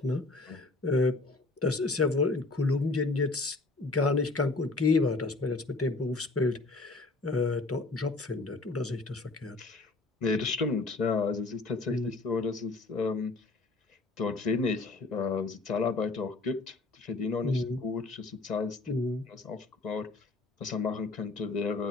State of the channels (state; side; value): quieter; right; 3.4 dB